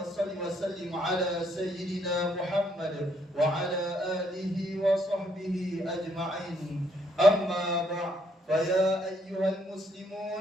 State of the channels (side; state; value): both; normal; correlation 0.71